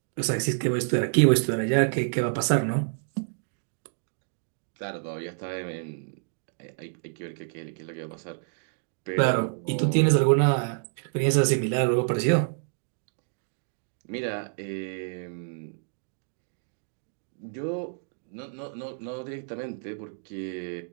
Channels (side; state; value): left; silent; digital silence